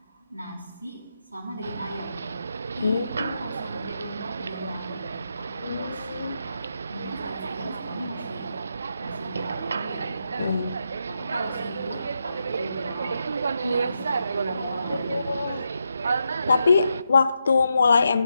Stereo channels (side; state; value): both; inverted; correlation -0.84